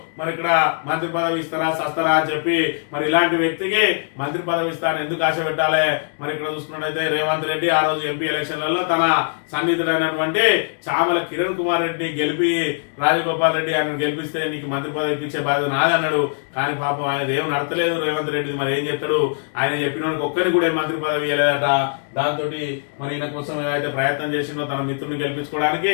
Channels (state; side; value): silent; right; digital silence